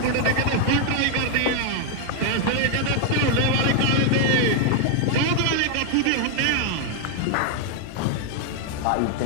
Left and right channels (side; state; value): both; different; correlation 0.00